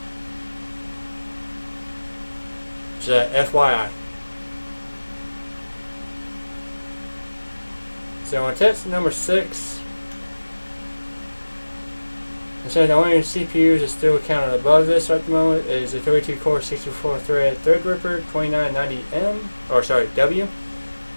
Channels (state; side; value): inverted; both; correlation -1.00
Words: Just FYI. So on test number 6, it says the only CPUs that still counted above this at the moment is the 32 core 64 thread Threadripper 2990M, or sorry, W,